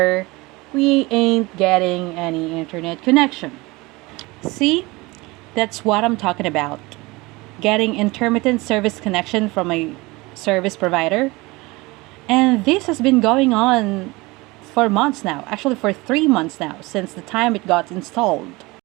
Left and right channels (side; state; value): left; quieter; 22.9 dB